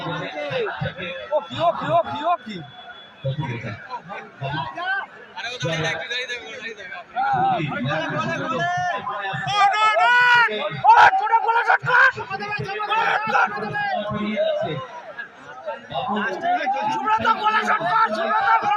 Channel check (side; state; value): both; identical; correlation 1.00